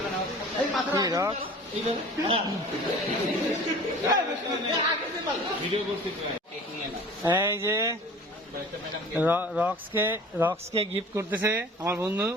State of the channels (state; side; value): normal; both; correlation 0.43